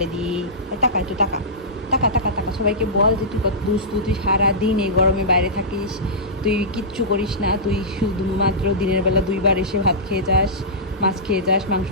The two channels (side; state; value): both; normal; correlation -0.16